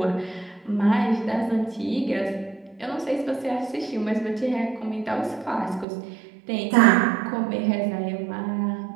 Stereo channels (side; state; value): left; drops out; at 5.9 s